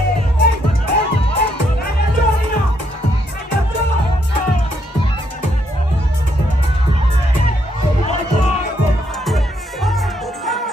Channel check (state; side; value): normal; both; correlation 0.74